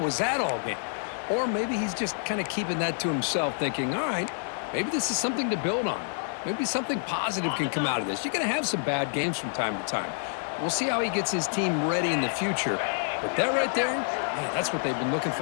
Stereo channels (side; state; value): right; silent; digital silence